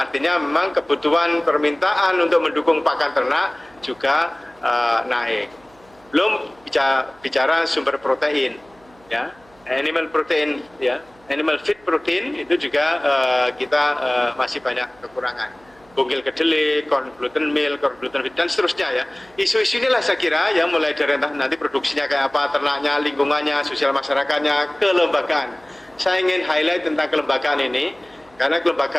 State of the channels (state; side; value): noise; right; hum, 29 dB below the sound